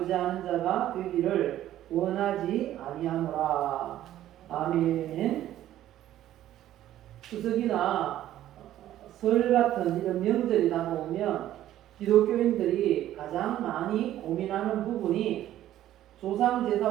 자가 되기를 원하지 아니하노라. 아멘. 추석이나 설 같은 이런 명절이 다가오면 기독교인들이 가장 많이 고민하는 부분이 조상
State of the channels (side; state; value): left; quieter; 12.8 dB